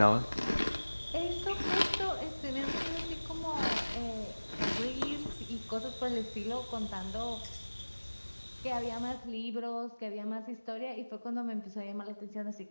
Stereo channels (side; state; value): both; inverted; correlation -1.00